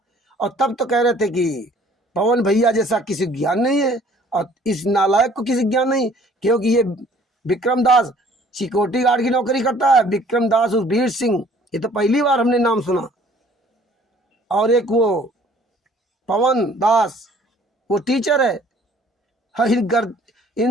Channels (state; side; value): normal; both; correlation 0.56